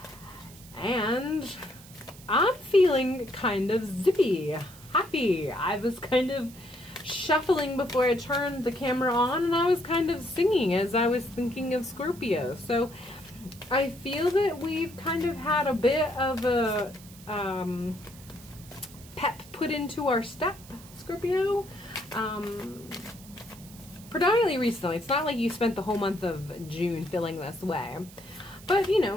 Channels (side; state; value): right; noise; hiss, 20 dB below the sound